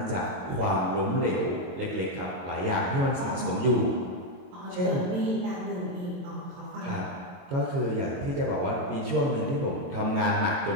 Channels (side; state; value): left; late; 22 ms